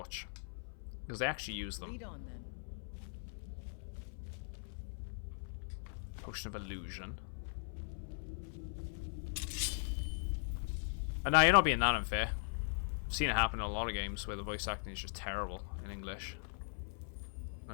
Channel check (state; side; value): silent; right; 51 dB below the other